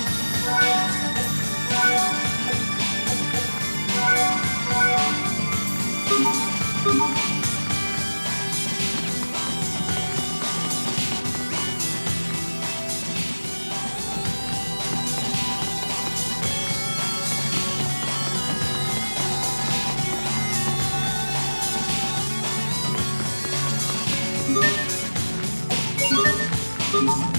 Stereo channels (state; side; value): inverted; both; correlation -1.00